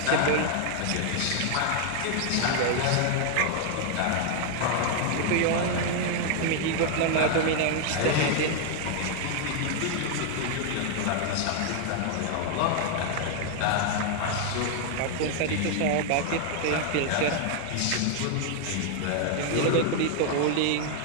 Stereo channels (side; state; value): both; different; correlation 0.00